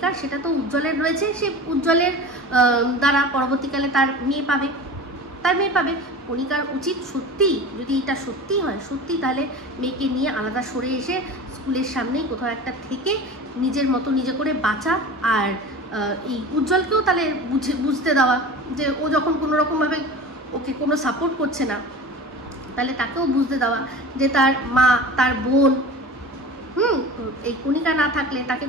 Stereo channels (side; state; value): both; normal; correlation 0.35